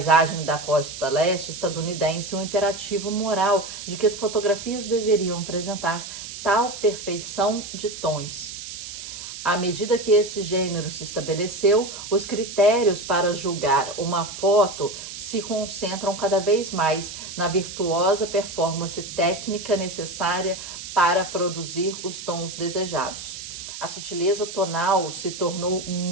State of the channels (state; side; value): noise; right; hiss, 10 dB below the sound